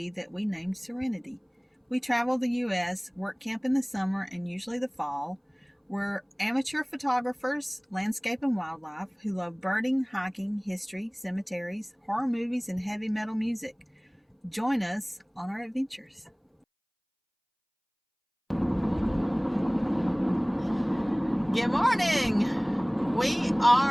that we named Serenity. We travel the U.S., work camp in the summer and usually the fall. We're amateur photographers, landscape and wildlife, who love birding, hiking, history, cemeteries, horror movies, and heavy metal music. Join us on our adventures. Good morning! We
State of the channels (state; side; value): identical; both; correlation 1.00